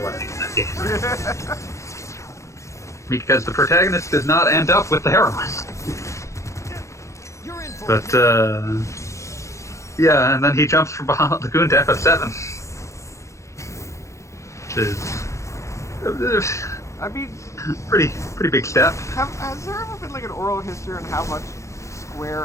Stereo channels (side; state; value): right; late; 0.14 ms